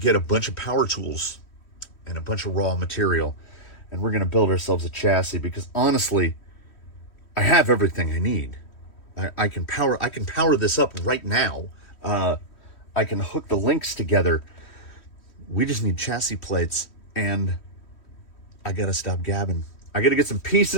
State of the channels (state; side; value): late; right; 3.1 ms